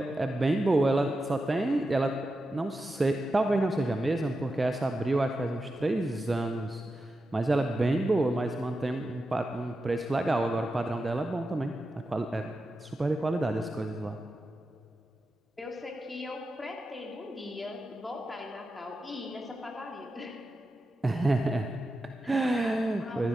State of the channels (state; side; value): normal; both; correlation 0.90